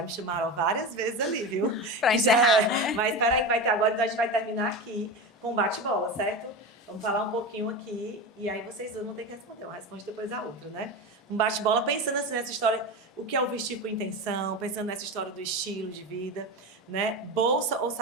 me chamaram várias vezes ali, viu? Pra encerrar, né? Mas peraí que vai ter agora, então a gente vai terminar aqui com bate-bola, certo? Vamos falar um pouquinho aqui e aí vocês dois vão ter que responder. Uma responde depois a outra, né? Um bate-bola pensando assim nessa história, o que é o vestir com intenção, pensando nessa história do estilo de vida, né? Bolsa ou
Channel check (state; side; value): normal; both; correlation 0.23